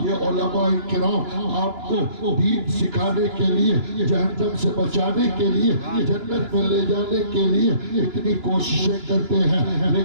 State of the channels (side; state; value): left; late; 2.9 ms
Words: یہ علماء کرام آپ کو دین سکھانے کے لیے، جہنم سے بچانے کے لیے، جنت میں لے جانے کے لیے اتنی کوششیں کرتے ہیں،